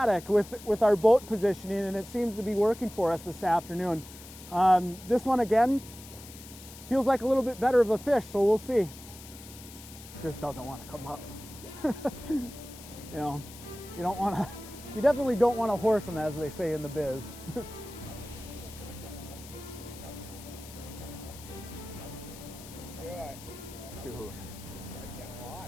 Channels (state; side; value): noise; left; hiss, 16 dB below the sound